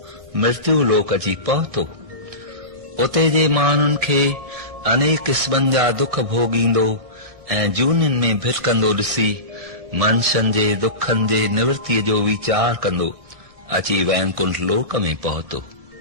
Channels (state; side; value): late; left; 1.6 ms